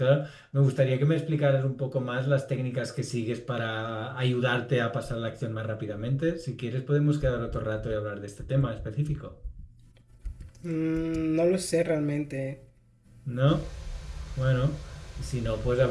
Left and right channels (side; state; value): both; identical; correlation 1.00